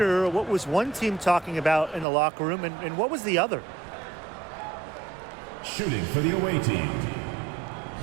what was one team talking about in the locker room and what was the other? Shooting for the away team.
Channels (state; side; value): drops out; left; at 2.1 s